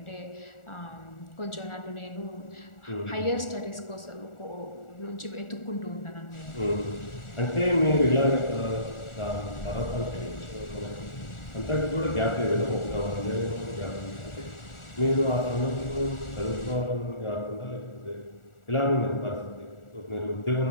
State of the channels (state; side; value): late; right; 1.4 ms